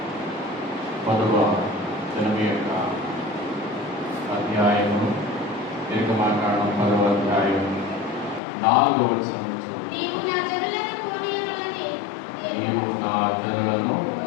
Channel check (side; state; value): right; drops out; at 8.4 s